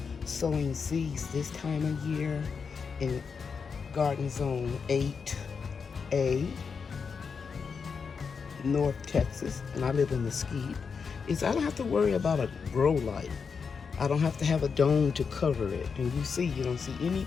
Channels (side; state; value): right; quieter; 5.7 dB